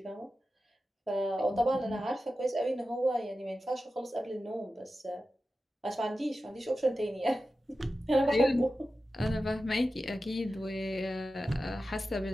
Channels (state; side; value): normal; both; correlation 0.93